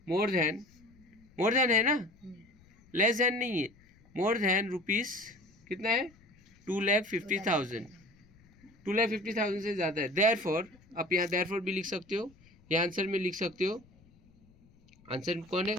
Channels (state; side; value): noise; left; rumble, 28 dB below the sound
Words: मोर देन है ना, लेस देन नहीं है, मोर देन रुपीस कितना है, 2,50,000, 2,50,000 से ज़्यादा है। देयरफॉर आप यहाँ देयरफॉर भी लिख सकते हो, या आंसर में लिख सकते हो। आंसर कौन है,